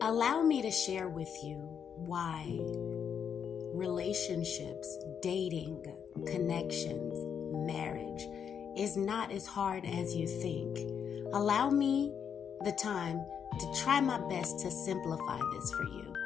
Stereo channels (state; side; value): quieter; right; 7.6 dB